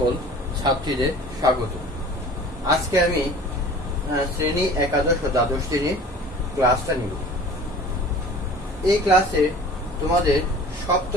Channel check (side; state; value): both; normal; correlation 0.44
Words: ছাত্রীদের স্বাগত। আজকে আমি শ্রেণী একাদশ ও দ্বাদশ শ্রেণীর ক্লাসটা নিব। এই ক্লাসে তোমাদের